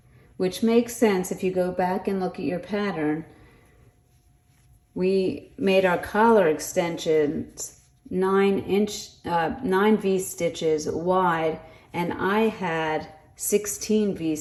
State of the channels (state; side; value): identical; both; correlation 1.00